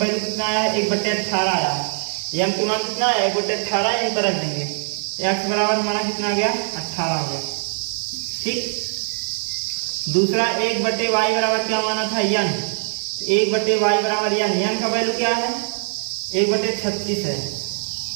कितना आया है 1/18 आया है। m की मान कितना है 1/18, यहीं पर रख देंगे। x बराबर हमारा कितना आ गया 18 हो गया। ठीक, दूसरा 1/y बराबर क्या माना था n, 1/y बराबर n का वैल्यू क्या है 1/36 है,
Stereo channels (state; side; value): silent; left; 61 dB below the other